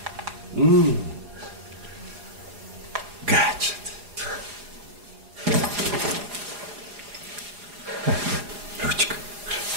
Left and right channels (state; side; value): late; left; 4.9 ms